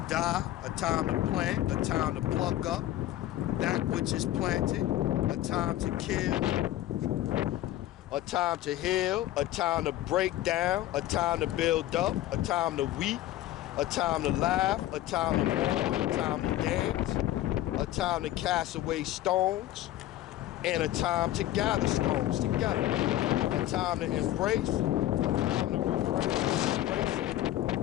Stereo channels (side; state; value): right; quieter; 14.1 dB